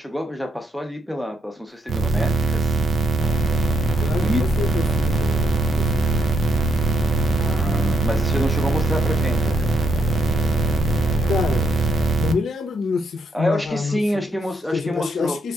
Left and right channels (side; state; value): both; normal; correlation 0.75